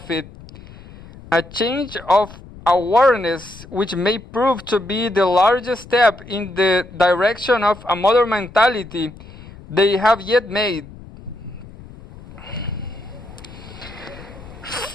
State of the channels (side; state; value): left; noise; rumble, 18 dB below the sound